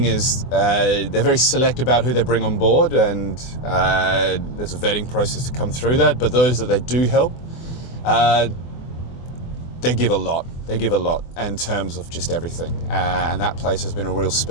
is they're very select about who they bring on board, and there's a vetting process to come through that. But those that they do help, they give a lot. They give a lot in terms of just everything. And that place has been a real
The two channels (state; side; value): late; right; 24 ms